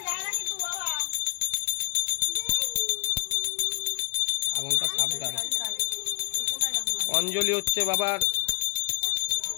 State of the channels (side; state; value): right; silent; 60 dB below the other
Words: যায় না কিন্তু বাবা। আগুনটা সাবধান। অঞ্জলি হচ্ছে বাবার